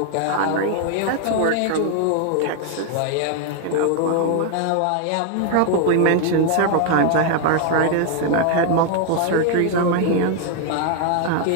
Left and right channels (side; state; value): both; different; correlation 0.00